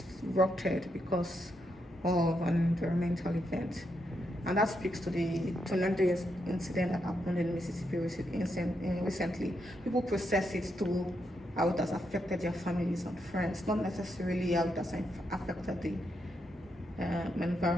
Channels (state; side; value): normal; both; correlation 0.81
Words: because of an environmental event. And that speaks to the tremendous incident that happened in Mississippi recently. People process it to how it has affected their families and friends, not necessarily how it has affected the